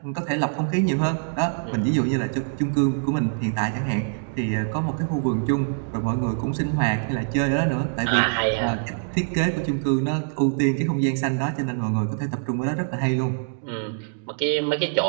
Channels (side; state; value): left; silent; digital silence